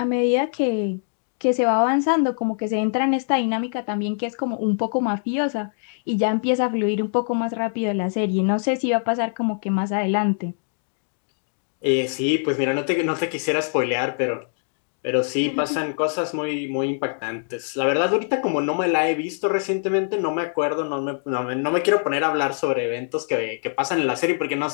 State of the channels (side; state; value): right; silent; digital silence